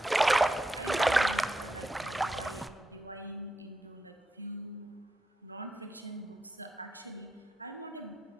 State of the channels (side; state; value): both; normal; correlation 0.86